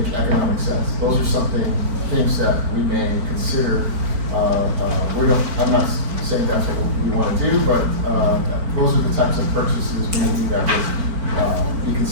economic sense. Those are things that we may consider. I'm not saying that's what we want to do, but those are the types of purchases maybe that would be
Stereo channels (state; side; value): late; left; 4.5 ms